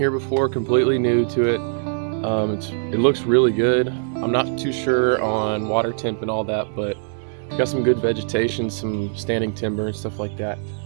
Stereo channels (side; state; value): left; silent; digital silence